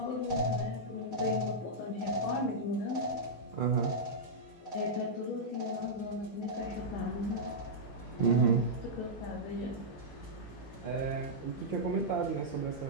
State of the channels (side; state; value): right; late; 15 ms